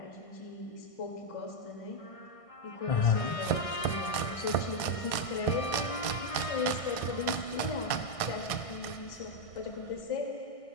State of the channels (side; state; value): right; late; 1.6 ms